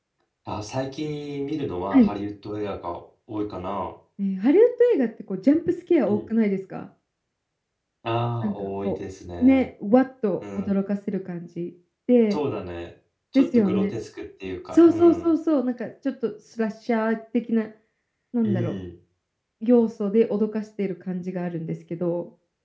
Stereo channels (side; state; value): both; identical; correlation 1.00